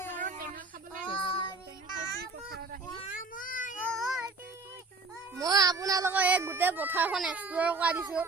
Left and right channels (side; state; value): left; quieter; 3.7 dB